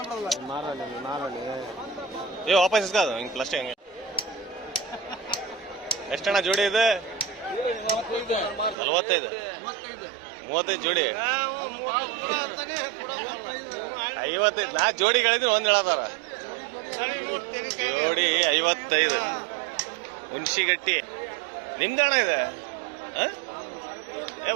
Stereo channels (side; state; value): left; drops out; at 8.8 s